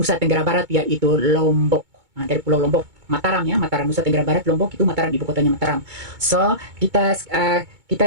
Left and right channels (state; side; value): late; left; 2.2 ms